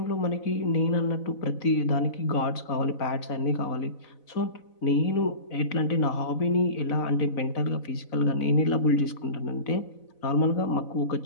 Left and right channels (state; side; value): late; right; 4.0 ms